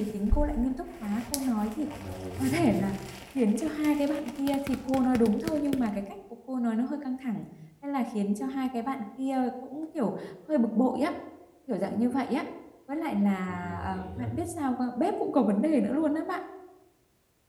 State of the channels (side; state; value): both; identical; correlation 1.00